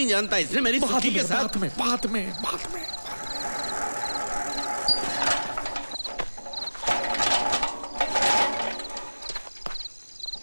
जानता, इसने मेरी सुखी के साथ। बात में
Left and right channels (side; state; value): both; inverted; correlation -1.00